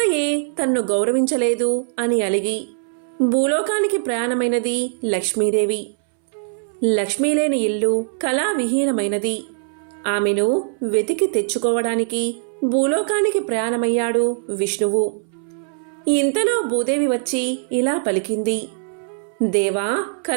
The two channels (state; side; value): silent; left; 65 dB below the other